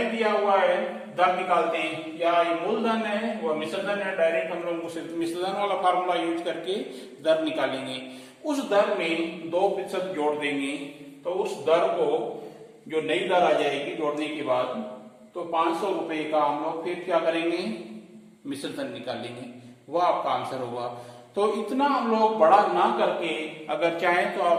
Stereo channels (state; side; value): identical; both; correlation 1.00